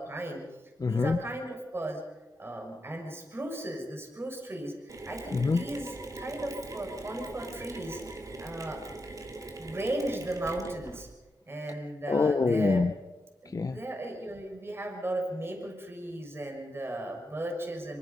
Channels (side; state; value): both; normal; correlation 0.84